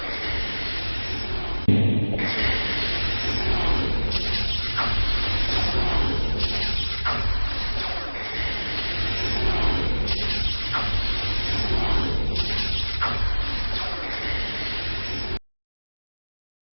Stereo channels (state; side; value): inverted; both; correlation -1.00